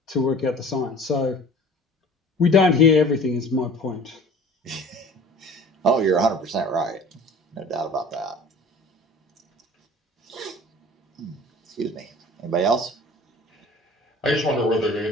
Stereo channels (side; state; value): both; normal; correlation 0.45